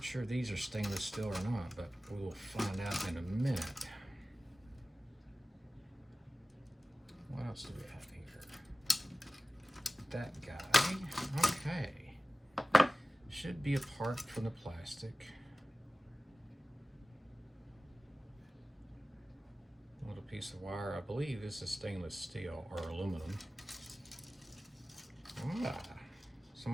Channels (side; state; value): both; normal; correlation 0.96